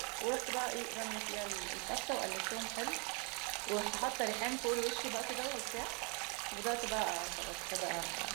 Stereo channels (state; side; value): quieter; left; 33.3 dB